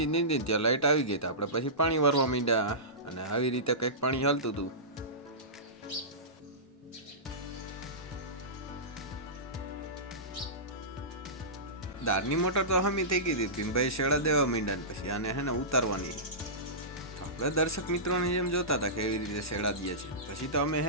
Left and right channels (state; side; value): normal; both; correlation -0.20